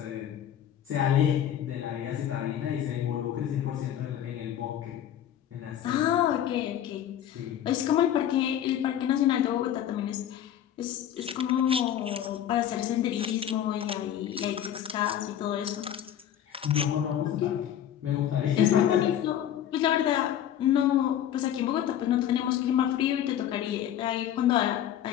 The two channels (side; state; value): right; quieter; 10.5 dB